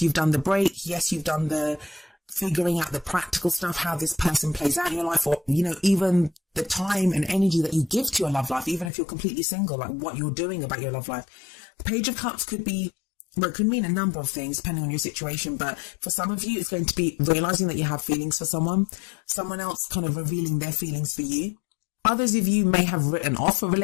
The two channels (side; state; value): right; drops out; at 8.9 s